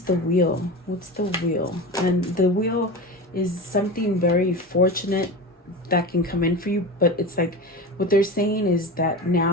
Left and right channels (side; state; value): both; normal; correlation 0.27